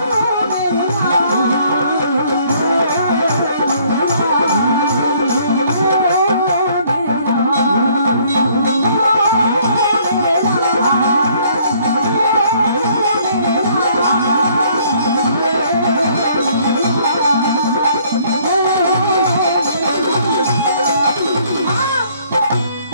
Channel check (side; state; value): both; inverted; correlation -0.62